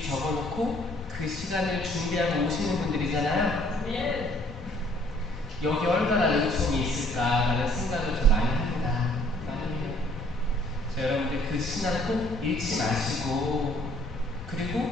적어놓고 그 시간을 준비하고 오시는 분들이잖아요. 여기 얼마나 은총이 있을까라는 생각을 좀 많이 합니다. 많이 해요. 여러분들 그 신앙 꼭 잃지 마시고,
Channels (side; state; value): both; normal; correlation 0.60